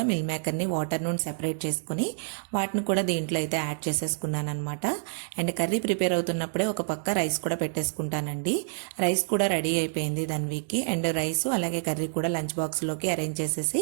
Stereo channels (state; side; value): silent; left; digital silence